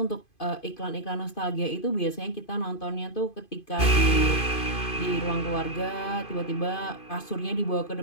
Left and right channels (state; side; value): late; right; 2.5 ms